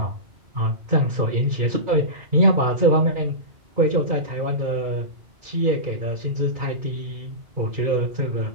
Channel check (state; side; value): late; left; 2.1 ms